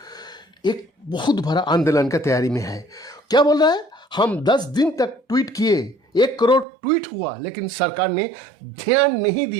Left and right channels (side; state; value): left; drops out; at 6.7 s